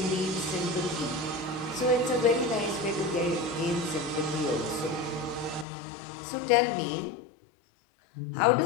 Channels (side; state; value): right; drops out; at 5.7 s